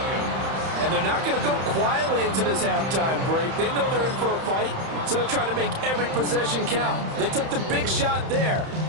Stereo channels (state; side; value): late; left; 31 ms